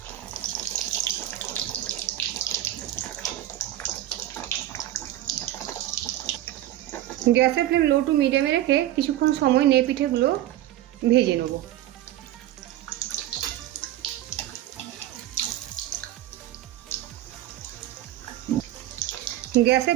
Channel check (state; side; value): quieter; left; 14.0 dB